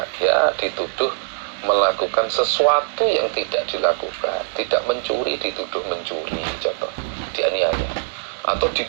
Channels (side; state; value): left; silent; digital silence